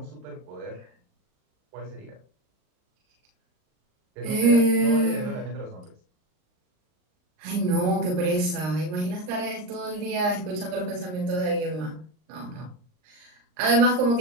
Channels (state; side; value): late; left; 39 ms